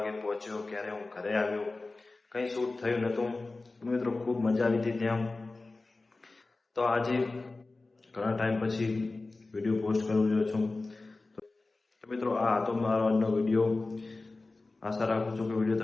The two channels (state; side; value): quieter; right; 3.4 dB